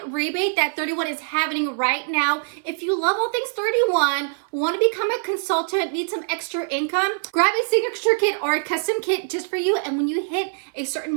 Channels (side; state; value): left; silent; 56 dB below the other